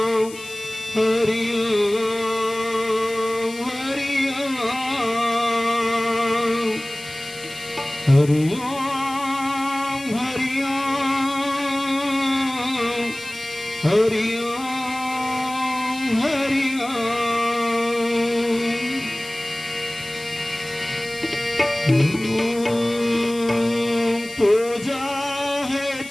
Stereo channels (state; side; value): noise; left; hiss, 16 dB below the sound